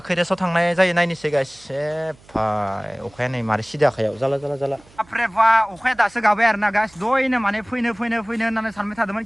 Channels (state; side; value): noise; right; hum, 27 dB below the sound